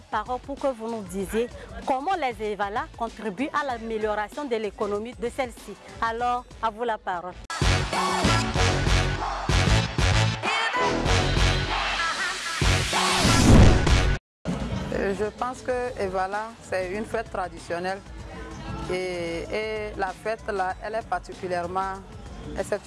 parole pour que vous nous disiez comment les Evala contribuent à l'amélioration de l'économie de celle-ci. Alors, à vous la parole. Je pense que Evala, c'est une fête traditionnelle et la fête là, elle est particulièrement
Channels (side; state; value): both; identical; correlation 1.00